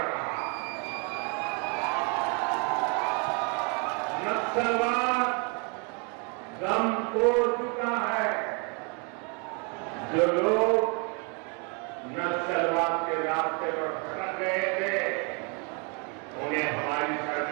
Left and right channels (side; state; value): left; quieter; 34.7 dB